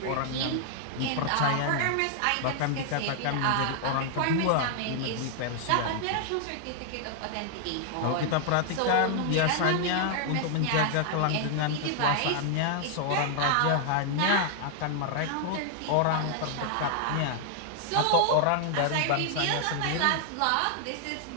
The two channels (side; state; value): both; different; correlation 0.00